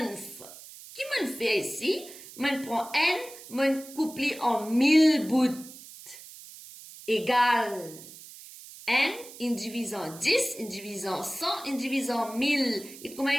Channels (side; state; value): right; noise; hiss, 17 dB below the sound